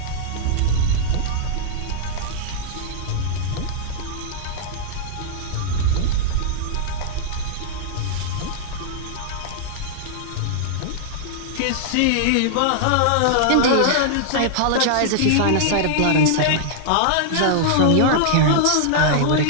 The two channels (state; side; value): different; both; correlation -0.01